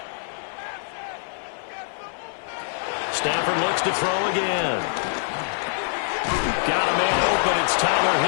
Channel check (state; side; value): silent; right; 57 dB below the other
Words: Stafford looks to throw again. Got a man open. It's Tyler